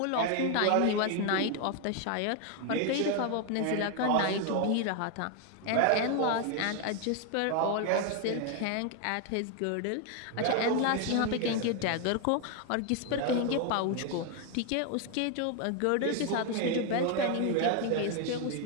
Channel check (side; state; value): both; different; correlation 0.01